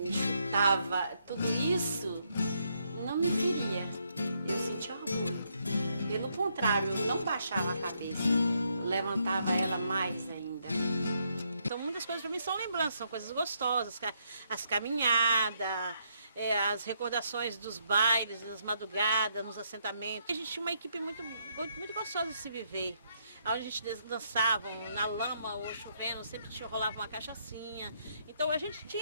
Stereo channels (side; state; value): both; inverted; correlation -0.75